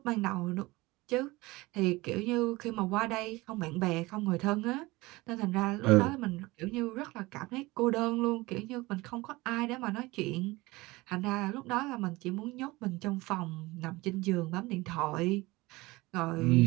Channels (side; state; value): left; quieter; 21.3 dB